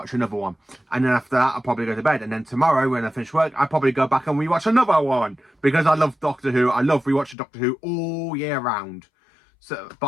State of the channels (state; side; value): drops out; right; at 7.4 s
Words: another one. And then after that, I'll probably go to bed. And then tomorrow, when I finish work, I'll probably go back and rewatch another one. Because I love Doctor Who. I love rewatching Doctor Who all year round. So,